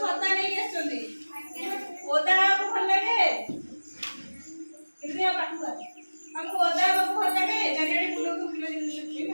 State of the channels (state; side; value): inverted; both; correlation -1.00